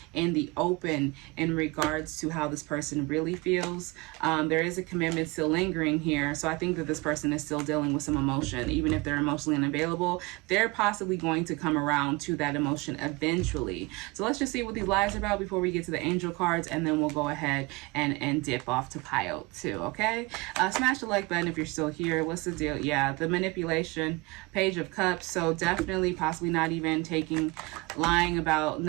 in the open in regards to how this person really feels. There is a commitment still lingering here, so I think that this person is still dealing with some emotion. Even if they're emotionally unavailable, they're possibly going to come around to that emotion eventually. So let's just see what these lies are about before we get to the angel cards, and then we'll go ahead and dip off to pile 2. Okay, smash the like button if you're still here. What's the deal? Yeah, the manipulation, Page of Cups. So definitely possibly not even lying about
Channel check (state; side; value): quieter; left; 25.1 dB